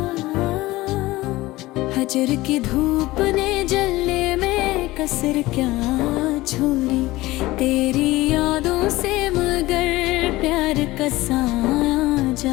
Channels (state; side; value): quieter; right; 18.8 dB